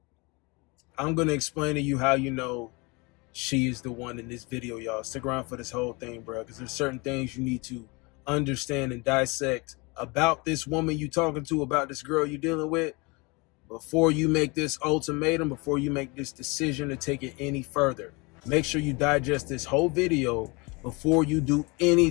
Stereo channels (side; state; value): right; quieter; 27.4 dB